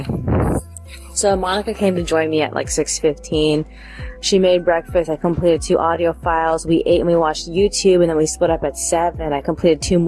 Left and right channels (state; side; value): identical; both; correlation 1.00